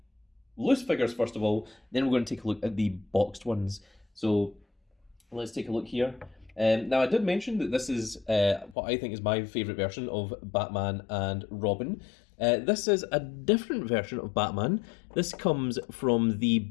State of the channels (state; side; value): drops out; right; at 8.8 s